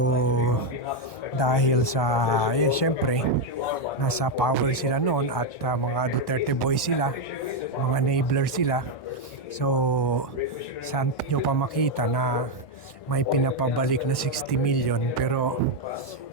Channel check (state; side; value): normal; both; correlation 0.03